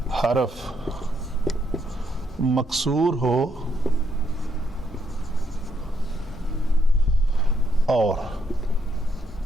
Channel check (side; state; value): both; normal; correlation 0.76